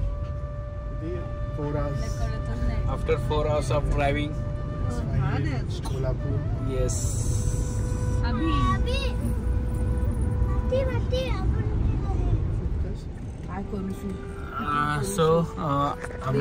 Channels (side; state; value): both; identical; correlation 1.00